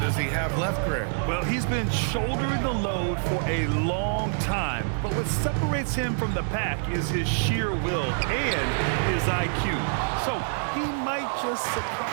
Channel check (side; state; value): left; silent; digital silence